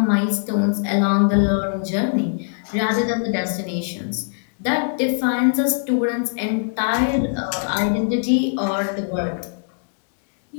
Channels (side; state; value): right; silent; digital silence